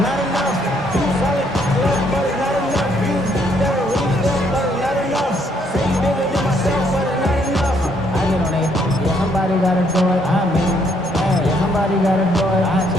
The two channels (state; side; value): normal; both; correlation 0.70